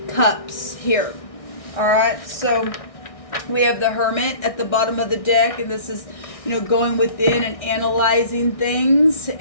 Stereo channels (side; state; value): right; late; 1.6 ms